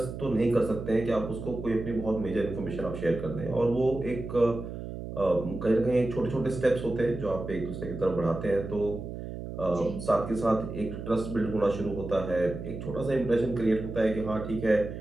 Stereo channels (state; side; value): noise; right; hum, 8 dB below the sound